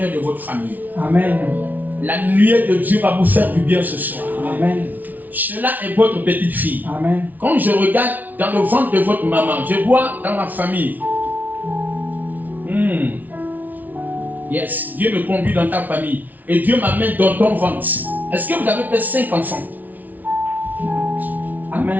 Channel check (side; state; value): left; late; 0.079 ms